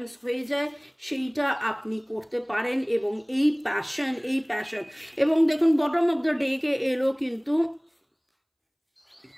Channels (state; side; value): identical; both; correlation 1.00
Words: হয়ে যায় সেইটা আপনি করতে পারেন। এবং এই প্যাশন এবং দেখুন বটম অফ দ্য ডে-কে এলো কিন্তু